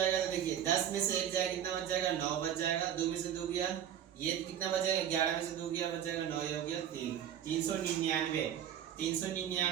तो देखिए 10 में से 1 जाएगा, कितना बच जाएगा 9 बच जाएगा, 2 में से 2 गया, ये कितना बच जाएगा 11 में से 2 गया, बच जाएगा 9, ये हो गया 3, 399,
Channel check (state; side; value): quieter; left; 9.8 dB